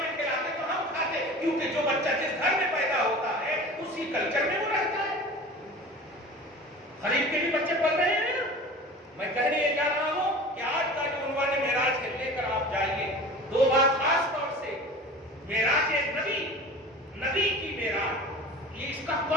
کھلاتے تو ہم کھاتے, کیونکہ جو بچہ جس گھر میں پیدا ہوتا ہے اسی کلچر میں وہ رہتا ہے. خرید کے بھی بچے پڑھ رہے ہیں. میں کہنے یہ جا رہا ہوں کہ آج کا جو عنوان معراج ہے لے کر آپ جائیے. 2 بات خاص طور سے, معراج نبی, نبی کی معراج, یہ اس کا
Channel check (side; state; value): both; normal; correlation 0.38